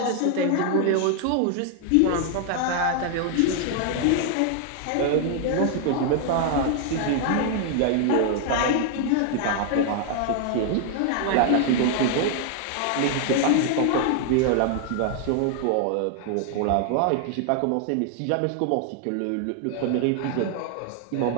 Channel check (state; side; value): different; both; correlation 0.00